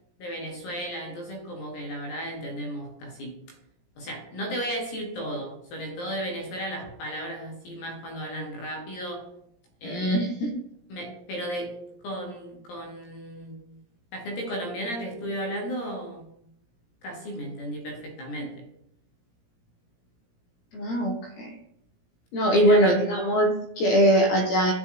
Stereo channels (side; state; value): right; late; 17 ms